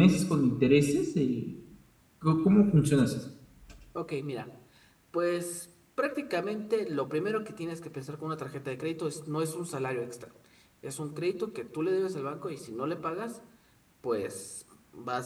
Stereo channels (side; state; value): both; identical; correlation 1.00